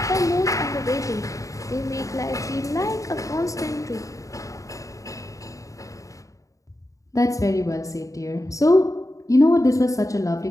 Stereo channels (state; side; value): late; right; 0.16 ms